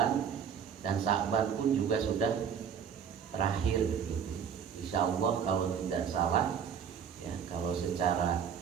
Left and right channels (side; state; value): left; quieter; 7.6 dB